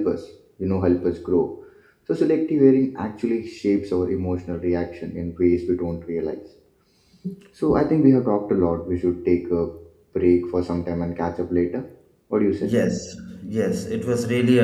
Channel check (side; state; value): both; identical; correlation 1.00